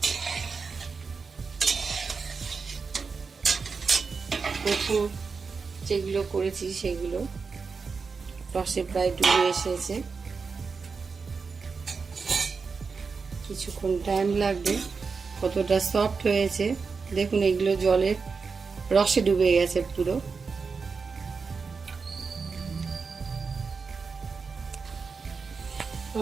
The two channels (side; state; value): left; quieter; 5.0 dB